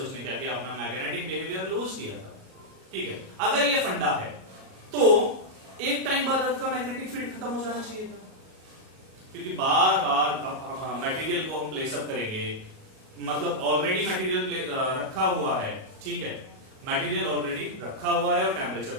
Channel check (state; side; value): late; left; 37 ms